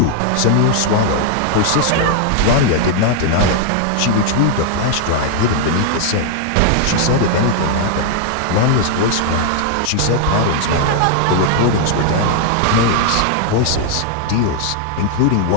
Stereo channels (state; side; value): different; both; correlation 0.00